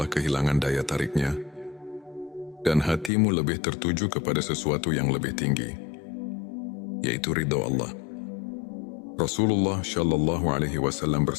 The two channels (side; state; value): right; drops out; at 3.1 s